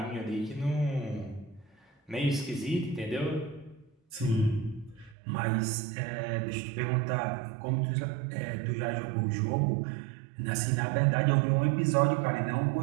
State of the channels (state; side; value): drops out; left; at 5.2 s